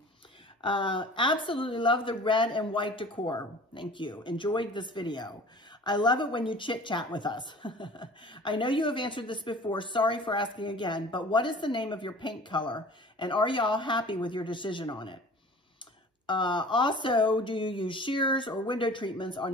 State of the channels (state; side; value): normal; both; correlation 0.44